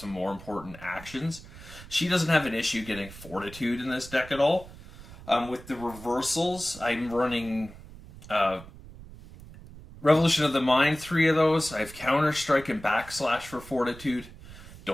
more important actions. She doesn't have an issue getting Fortitude in this deck at all. With the reversals, I'm running Revolution of the Mind, 3 of those. I have Counter Strike and Backslash for Fortitude.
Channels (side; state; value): right; noise; rumble, 17 dB below the sound